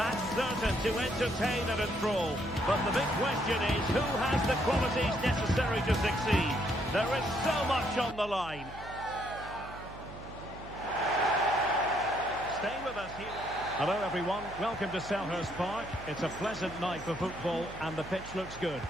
certain to entertain and enthrall. But the big question is, who has the qualities necessary to succeed? There is so much on the line. Stay with us here. Hello everyone, welcome to Selhurst Park. It's a pleasant night for football and the pitch looks good.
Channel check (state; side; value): noise; right; hum, 15 dB below the sound